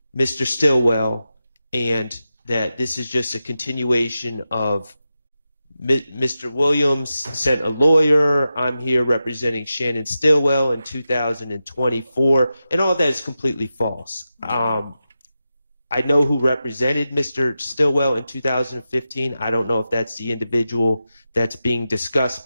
Mr. Stillwell, and that this is just a continuation of Mr. Williams sent a lawyer. I'm here representing Shannon Stillwell in 2024, and all that is completely false. I know who represented Mr. Stillwell in 2015. I don't know if that's the individual that's being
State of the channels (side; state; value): both; inverted; correlation -0.91